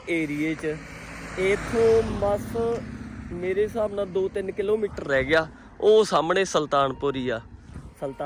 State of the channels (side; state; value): both; identical; correlation 1.00